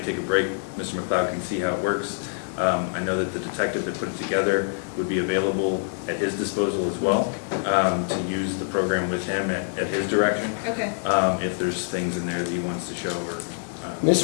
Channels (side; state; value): right; silent; digital silence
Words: take a break. Mr. McLeod can see how it works. I know that the detective that put it together would be available at his disposal as well, to use the program with him at his direction. Okay. If there's things in there that he wants to show or.